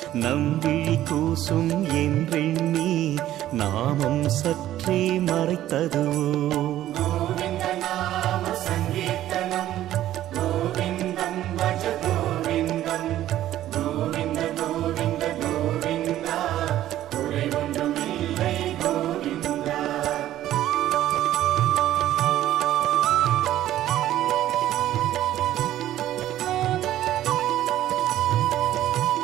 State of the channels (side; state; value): left; quieter; 13.2 dB